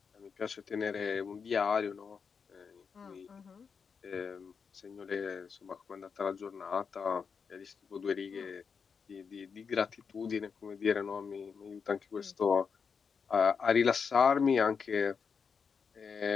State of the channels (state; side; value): quieter; right; 6.0 dB